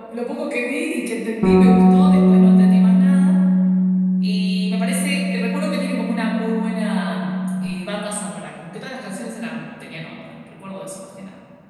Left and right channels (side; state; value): both; identical; correlation 1.00